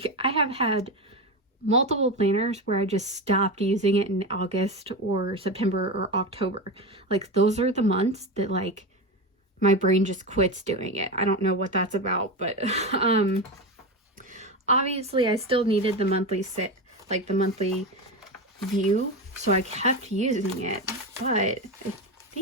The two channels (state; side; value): normal; both; correlation 0.19